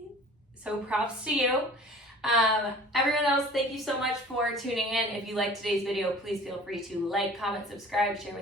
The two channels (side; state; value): both; normal; correlation 0.46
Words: So props to you. Everyone else, thank you so much for tuning in. If you liked today's video, please feel free to like, comment, subscribe, share